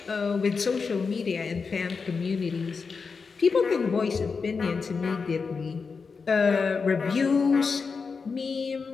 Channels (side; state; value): right; quieter; 5.0 dB